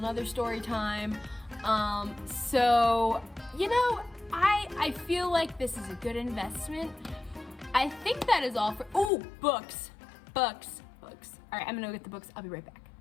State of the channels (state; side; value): drops out; right; at 9.1 s